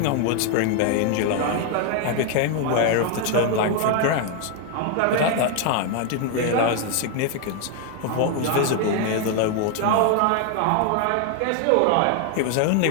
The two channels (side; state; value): both; different; correlation 0.00